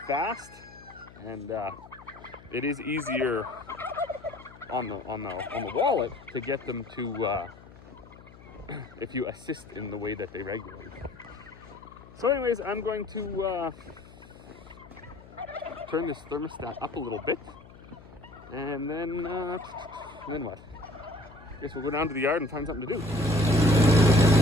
fast, and it is easier on the wallet to get them to if you assist in the way that they regulate. So anyways, I'm going to turn this thermostat up a little bit, and then what? I guess we'll go down to the yard and find something to do.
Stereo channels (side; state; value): left; noise; hum, 20 dB below the sound